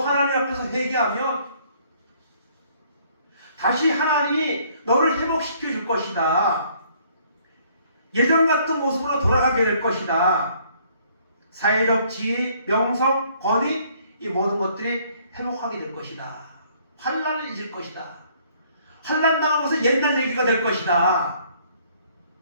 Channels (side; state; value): both; inverted; correlation -0.62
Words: 앞에서 회개하면 다시 하나님이 너를 회복시켜 줄 것이다. 예전 같은 모습으로 돌아가게 될 것이다. 사회적 지위, 명성, 권위 이 모든 것들이 회복하게 될 것이다. 환난을 잊을 것이다. 환난 당한 것은 옛날 얘기가 될 것이다.